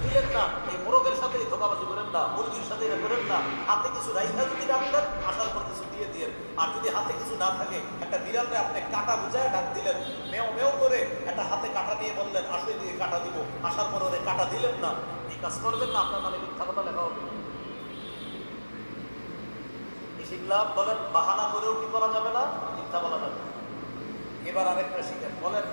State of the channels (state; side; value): inverted; both; correlation -1.00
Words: দিলেন না, এই মোরগের সাথে ধোকাবাজি করেন না, মুরগির সাথে এটা করেন না। হাতে কিছু রাইখা যদি ডাকলেন, আসার পর কিছু দিয়ে দিলেন। আর যদি হাতে কিছু না থাকে, একটা বিড়ালকে আপনি কাটা বুঝায় ডাক দিলেন, মেও মেও করে একটা হাতে কাটা নিয়ে বললেন আসলে দিয়ে কাটা দিব, আসার পর ওরে কাটা দিলেন না, এই কাজ করবেন না, আপনার নামে মিথ্যা কথা লেখা হবে। শিখলাম, বলেন বাহানা করেও কি করা যাবে না, মিথ্যা বলা যাবে। এবার আরেকটা শিখেন, বলেন